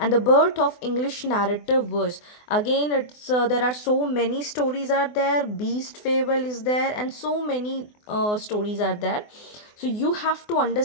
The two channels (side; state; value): right; late; 24 ms